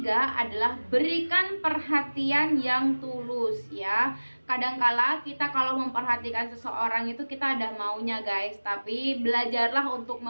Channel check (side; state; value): both; inverted; correlation -1.00